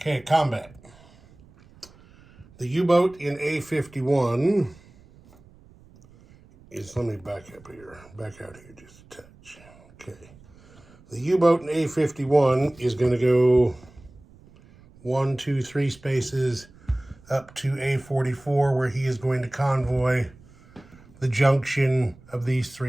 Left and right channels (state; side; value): noise; right; rumble, 25 dB below the sound